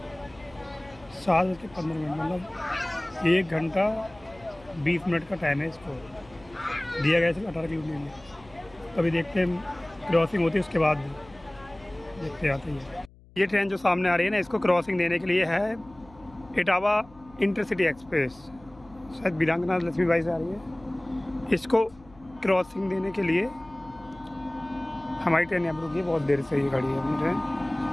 7:15, मतलब 1 घंटा 20 मिनट का टाइम है इसको दिया गया है 18 किलोमीटर में। अभी देखते हैं क्रॉसिंग होती है, उसके बाद देखते आते हैं। ये ट्रेन जो सामने आ रही है ना, इसको क्रॉसिंग देने के लिए है इटावा इंटरसिटी एक्सप्रेस, शायद वीरांगना लक्ष्मीबाई से आ रही है। इसको क्रॉसिंग देने के लिए हमारी ट्रेन यहाँ पर रुकी है, बहुत देर से ये गाड़ी है अपनी ट्रेन।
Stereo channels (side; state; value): left; noise; hum, 25 dB below the sound